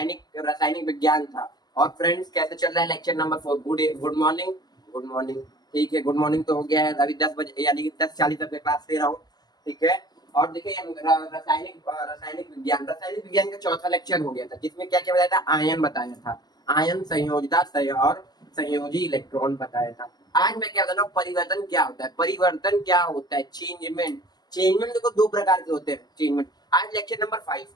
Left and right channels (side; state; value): right; late; 0.20 ms